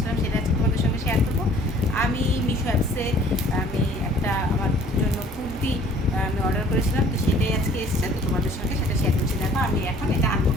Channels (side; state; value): both; normal; correlation 0.53